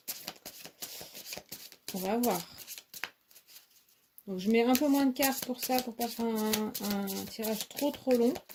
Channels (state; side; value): identical; both; correlation 1.00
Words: on va voir. Donc, je mets un peu moins de cartes pour ça, pour pas faire un tirage trop long.